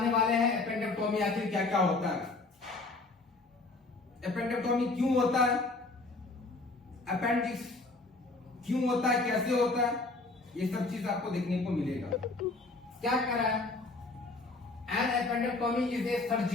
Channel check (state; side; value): quieter; right; 3.4 dB